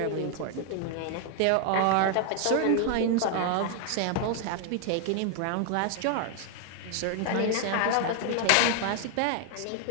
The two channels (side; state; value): both; different; correlation 0.00